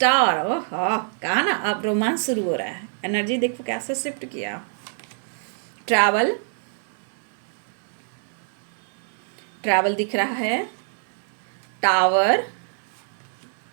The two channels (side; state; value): left; silent; digital silence